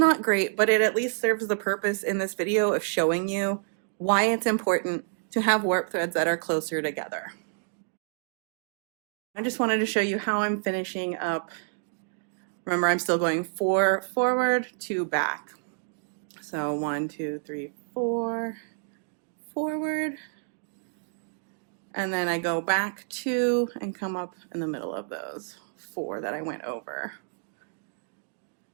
great, but it at least serves the purpose in this video of showing you why it's important to have warp threads that are closer together. I just wanted to show you how I'm finishing up. Remember, I'm still going 4 forward, 2 back. So 1, 2, 3, 4 forward, and then I go back 2 and come up in the middle of those 4 that I went over.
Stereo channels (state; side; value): silent; left; digital silence